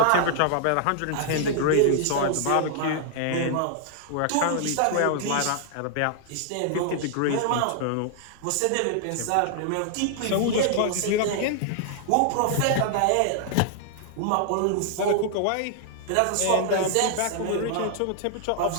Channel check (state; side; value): different; both; correlation 0.00